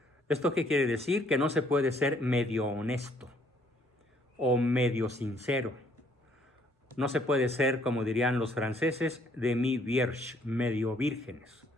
¿Esto qué quiere decir? Que no se puede ser medio honesto o medio sincero. No se puede ser, como dirían los franceses, demi-vierge, medio vírgenes.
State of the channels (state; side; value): normal; both; correlation 0.65